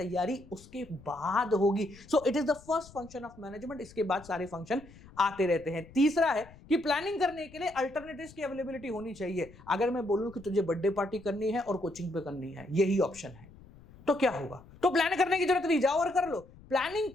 उसके बाद होगी। So it is the first function of management. इसके बाद सारे फंक्शन आते रहते हैं। तीसरा है कि प्लानिंग करने के लिए अल्टरनेटिव्स की अवेलेबिलिटी होनी चाहिए। अगर मैं बोलूं कि तुझे बर्थडे पार्टी करनी है और कोचिंग पे करनी है, यही ऑप्शन है, तो क्या होगा? तो प्लान करने की जरूरत नहीं, जाओ और कर लो। प्लानिंग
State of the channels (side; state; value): left; noise; rumble, 22 dB below the sound